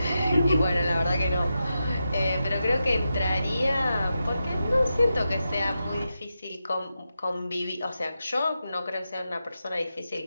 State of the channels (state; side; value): inverted; both; correlation -0.89